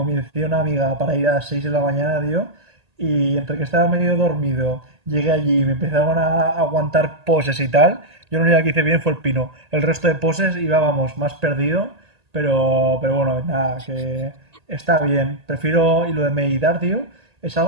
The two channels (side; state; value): left; late; 1.8 ms